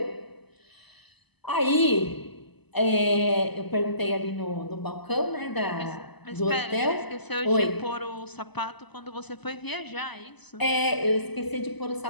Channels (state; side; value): late; right; 0.99 ms